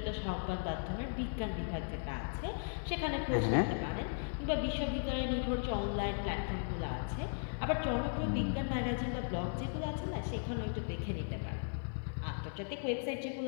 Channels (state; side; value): silent; right; 53 dB below the other